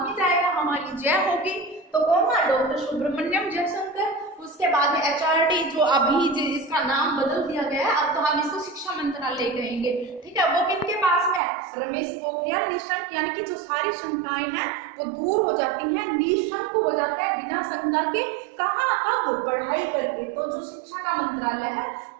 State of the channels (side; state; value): left; drops out; at 11.4 s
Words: जाएगा, हमारी जय होगी। तो कौन था? डॉक्टर सुब्रमण्यम जयशंकर। उसके बाद में HRD जो अभी इसका नाम बदल दिया गया है, अब तो हम इसको शिक्षा मंत्रालय कहेंगे। ठीक है, वो किनके पास में? रमेश पोखरियाल निशंक। यानी कि जो सारी शंकाएं हैं वो दूर हो जाती हैं, निशंक हो जाता है बिना शंका के। कहाँ? कब? पढ़ाई करके। तो जो शिक्षा का मंत्रालय है